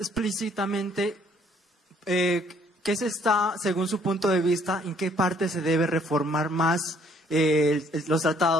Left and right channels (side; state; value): both; normal; correlation 0.63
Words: ¿qué se está, según su punto de vista, en qué parte se debe reformar más los